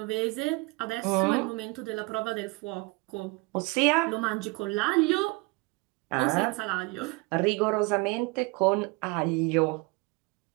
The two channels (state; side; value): quieter; left; 26.5 dB